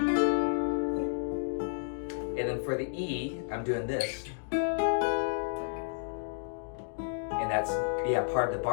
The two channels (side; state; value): right; silent; digital silence